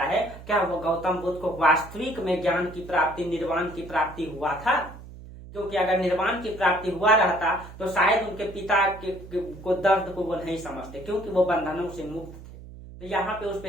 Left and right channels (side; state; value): right; noise; hum, 16 dB below the sound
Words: है, क्या वो गौतम बुद्ध को वास्तविक में ज्ञान की प्राप्ति, निर्वाण की प्राप्ति हुआ था? क्योंकि अगर निर्वाण की प्राप्ति हुआ रहता तो शायद उनके पिता को दर्द को वो नहीं समझते, क्योंकि वो बंधनों से मुक्त थे। तो यहाँ पे उस